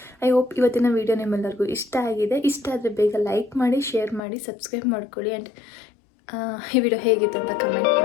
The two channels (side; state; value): right; drops out; at 4.2 s